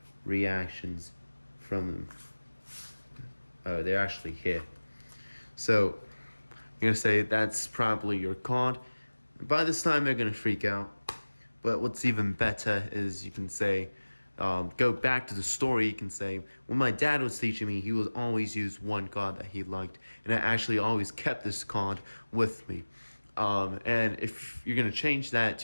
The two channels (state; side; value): inverted; both; correlation -1.00